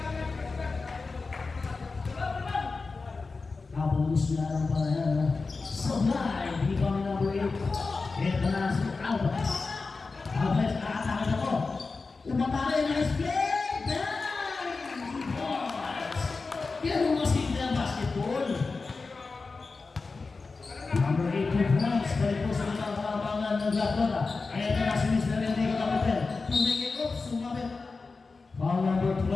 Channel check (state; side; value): quieter; right; 4.1 dB